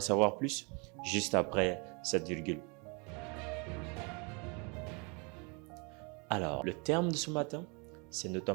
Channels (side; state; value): left; quieter; 32.4 dB